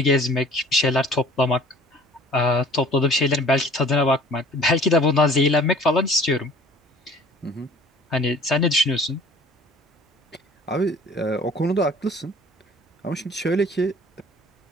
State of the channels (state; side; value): normal; both; correlation 0.50